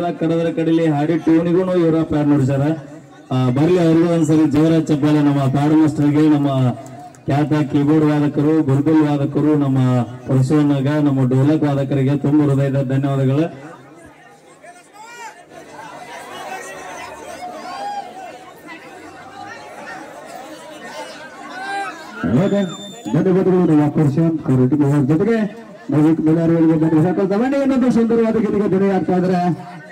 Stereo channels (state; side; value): identical; both; correlation 1.00